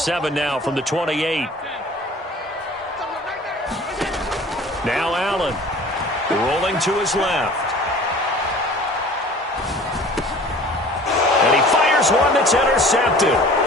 now from the 28. Now Allen rolling to his left. And he fires one that's intercepted.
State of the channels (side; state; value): both; normal; correlation 0.46